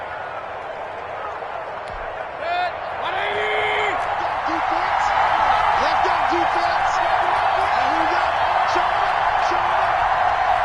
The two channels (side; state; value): both; identical; correlation 1.00